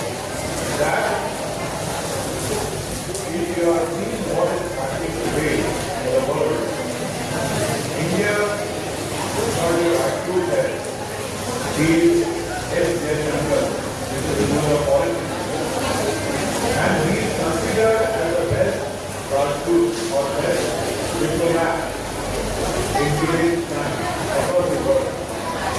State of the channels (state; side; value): identical; both; correlation 1.00